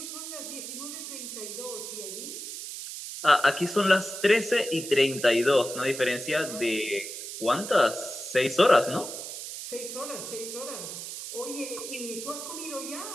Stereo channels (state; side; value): noise; right; hiss, 8 dB below the sound